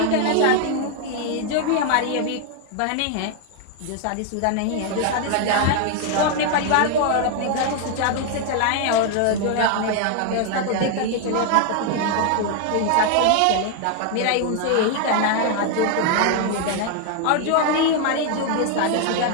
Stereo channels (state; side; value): different; both; correlation 0.00